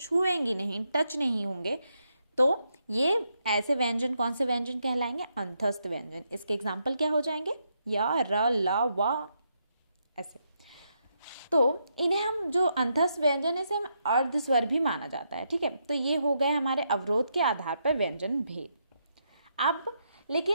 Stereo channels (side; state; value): both; inverted; correlation -0.80